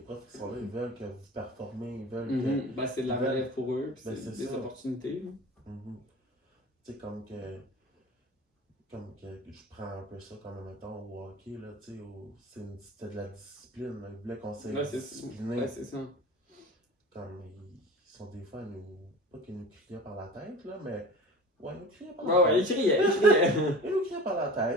qui sont là, ils veulent que vous performez, ils veulent que... Ben c'est de la relève pour eux, puis c'est des opportunités. Tu sais, comme que je prends un peu ça comme, mettons, au hockey, là, tu sais, c'était de la discipline, là. Ils voulaient qu'on s'est discipliné. Ouais, c'est ça. comme, ils sont des fois, pas qu'ils nous criaient par la tête, là, mais, ouais, ils nous criaient par Ouais, la ouais, il tête. criait, il criait. Ils nous criaient par la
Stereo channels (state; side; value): normal; both; correlation 0.37